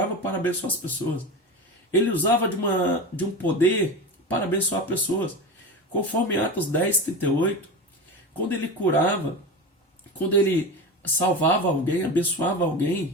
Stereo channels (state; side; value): normal; both; correlation 0.26